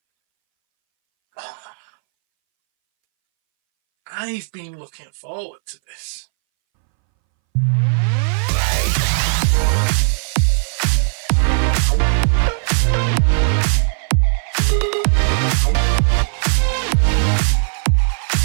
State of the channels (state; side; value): silent; left; 65 dB below the other